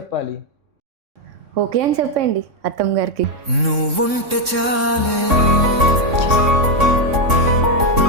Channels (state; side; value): late; left; 3.6 ms